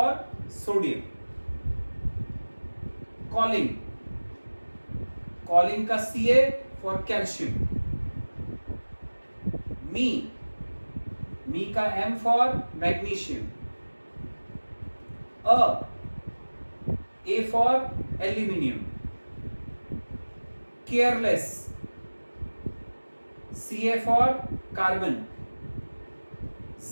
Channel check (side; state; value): both; inverted; correlation -1.00